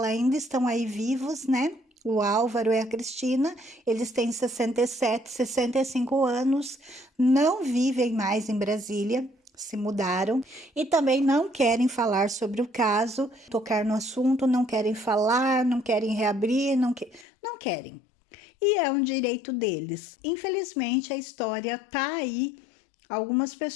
ainda estão aí vivos, né? O Álvaro e a Cristina, eles têm 67, 65 anos, não vivem mais em Brasília, se mudaram e também não querem falar sobre o caso, tocar no assunto, não querem falar, não querem reabrir, não querem. E é um direito deles. Infelizmente, a história tá aí. Algumas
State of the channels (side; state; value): right; drops out; at 17.2 s